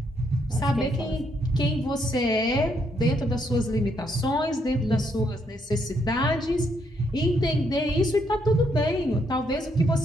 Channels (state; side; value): normal; both; correlation 0.74